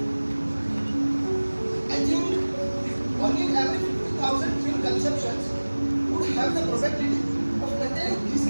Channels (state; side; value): inverted; both; correlation -1.00